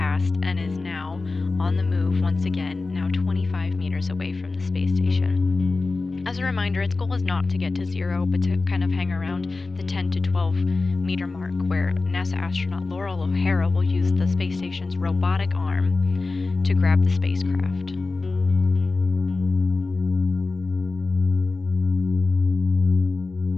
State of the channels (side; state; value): right; quieter; 3.6 dB